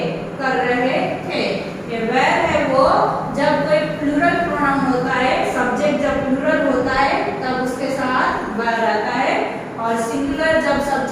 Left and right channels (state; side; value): identical; both; correlation 1.00